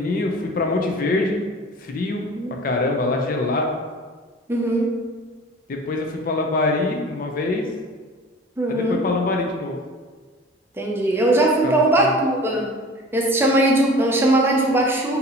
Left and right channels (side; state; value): both; normal; correlation 0.41